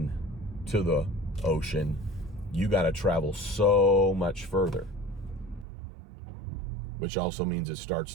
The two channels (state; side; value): drops out; left; at 5.7 s